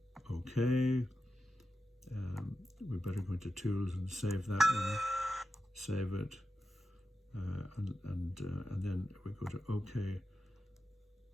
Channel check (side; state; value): both; normal; correlation 0.90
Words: okay. We better go into Tools and save that one. Save it. And then we go to OK,